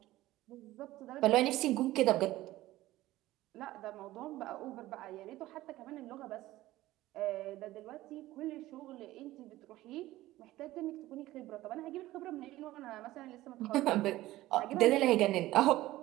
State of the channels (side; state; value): left; quieter; 16.4 dB